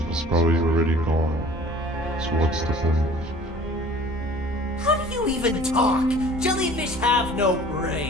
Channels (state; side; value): normal; both; correlation 0.47